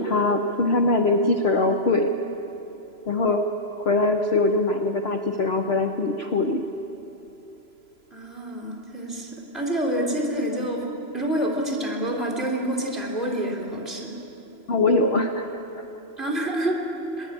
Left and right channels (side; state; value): right; late; 3.0 ms